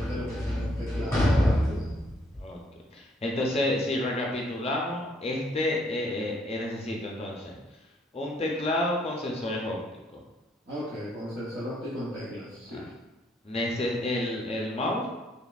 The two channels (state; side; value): normal; both; correlation 0.68